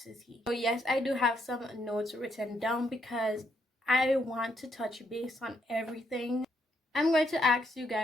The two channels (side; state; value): both; normal; correlation 0.75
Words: So yes, I do have some notes written down because I want to touch base on everything. I'm going to ask you